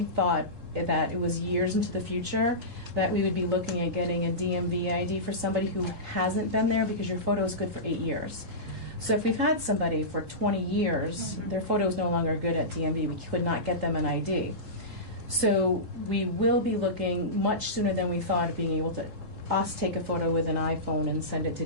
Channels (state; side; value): late; left; 3.7 ms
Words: thought that it was years into the future that we would be looking at getting a DMV ID for somebody who hasn't been there, because your photo is good for 8 years. So if we've had somebody for 20 years, their photo is no longer good at DMV, we could not get them an ID. So we will be looking much sooner than we thought of being able to take a photo with an iPhone and send it to